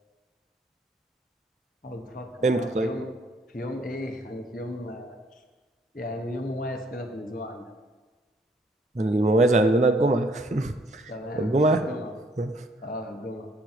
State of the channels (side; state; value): both; normal; correlation 0.64